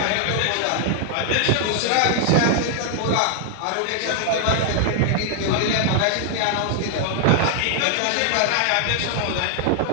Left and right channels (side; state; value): both; different; correlation 0.00